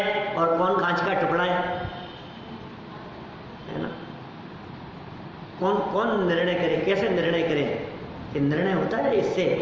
और कौन कांच का टुकड़ा है ना? कौन कौन निर्णय करे? कैसे निर्णय करे? कि निर्णय होता है इससे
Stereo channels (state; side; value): identical; both; correlation 1.00